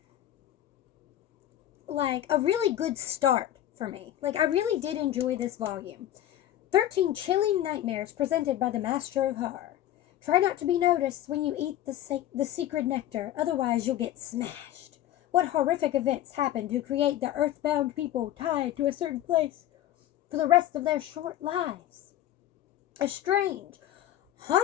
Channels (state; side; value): quieter; right; 12.7 dB